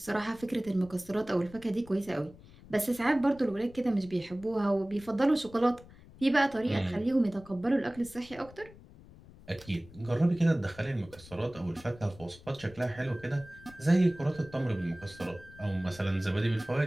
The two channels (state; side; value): noise; left; rumble, 21 dB below the sound